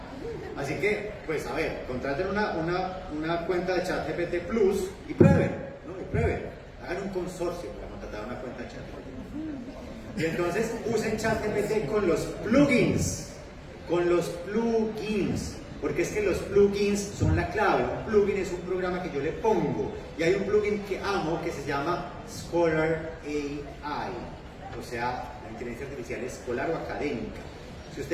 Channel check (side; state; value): both; identical; correlation 1.00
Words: Así que, pues, a ver, contraten una cuenta de ChatGPT Plus y prueben, ¿no? Y prueben. Hagan un consorcio para contratar una cuenta de ChatGPT. Y entonces, usen ChatGPT con los plugins. Con los plugins. Porque es que los plugins son la clave. Un plugin es un programa que yo le pongo. Y hay un plugin que amo que se llama Scholar AI. O sea, la inteligencia artificial escolar o académica. Si